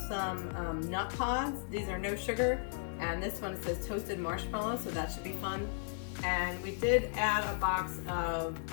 some nut pods. These are no sugar, and this one says toasted marshmallow, so that should be fun. And we did add a box of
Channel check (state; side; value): silent; right; 54 dB below the other